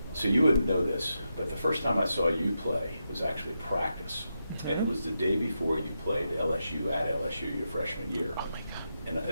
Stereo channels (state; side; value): inverted; both; correlation -0.87